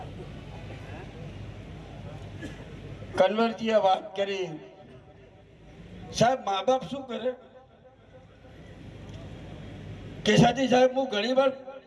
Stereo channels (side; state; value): both; identical; correlation 1.00